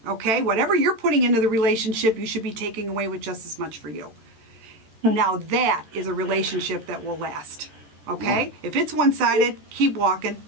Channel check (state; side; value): late; left; 14 ms